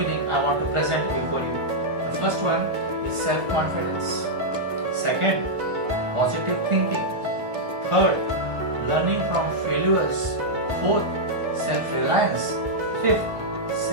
I want to present before you. The first one is self-confidence. Second, positive thinking. Third, learning from failures. Fourth, self-reliance. Fifth,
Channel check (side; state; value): left; late; 1.4 ms